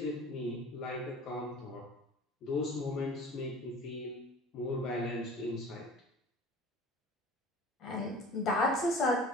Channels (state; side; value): normal; both; correlation 0.42